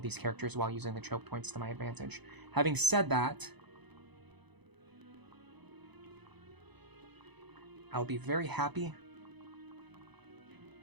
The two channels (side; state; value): left; late; 0.99 ms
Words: these characters while using the choke points to my advantage. Having said that, I'll be very happy